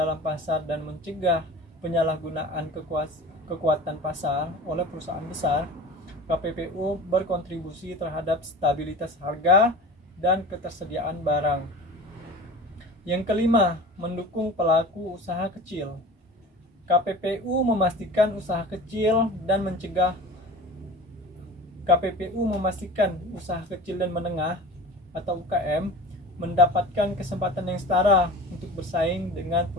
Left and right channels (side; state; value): both; normal; correlation 0.36